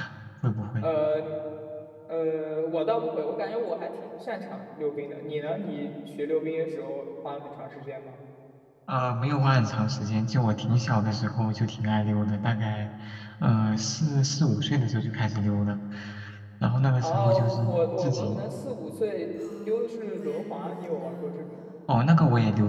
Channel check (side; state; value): both; identical; correlation 1.00